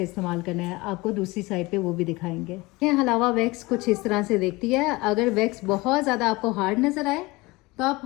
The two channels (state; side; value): quieter; right; 22.4 dB